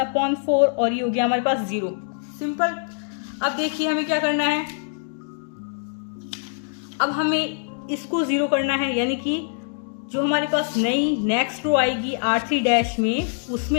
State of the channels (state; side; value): silent; right; digital silence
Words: और ये हो गया हमारे पास 0। सिंपल। अब देखिए हमें क्या करना है, अब हमें इसको 0 करना है, यानी कि जो हमारे पास नई नेक्स्ट रो आएगी R3 डैश में,